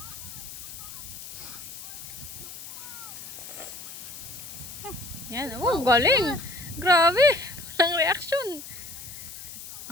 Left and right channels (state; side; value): noise; left; hiss, 11 dB below the sound